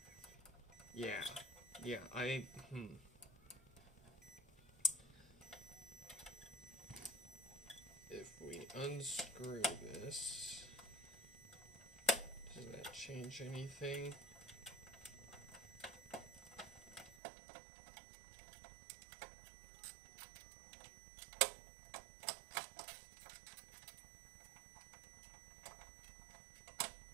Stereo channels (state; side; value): drops out; left; at 17.2 s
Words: yeah. If we unscrew this, does that change anything?